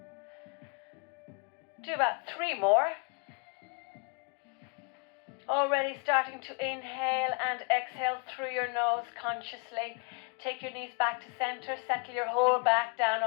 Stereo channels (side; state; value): right; quieter; 33.0 dB